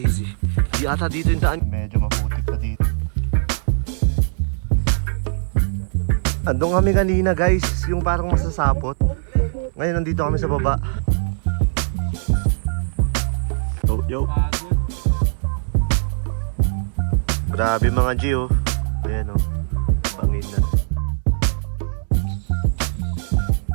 Di ata dito yung daan. Medyo maputik na dito. Andun kami kanina guys, yung parang masasapot. Ngayon nandito kami sa baba. Oh, yo. Grabe mga G oh. Ayan oh. Bangin na.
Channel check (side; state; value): left; silent; digital silence